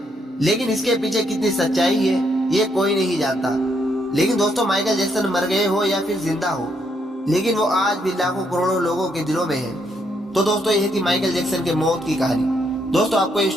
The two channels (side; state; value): both; normal; correlation 0.75